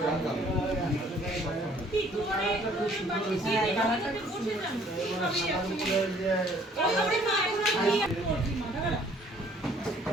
কি করে তুমি বাকি দিয়ে দিতে বসে যান ওই ওরে মা এখন কি করছি মাথা খারাপ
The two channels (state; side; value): normal; both; correlation 0.59